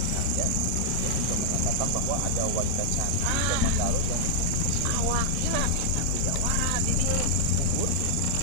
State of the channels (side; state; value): both; different; correlation -0.01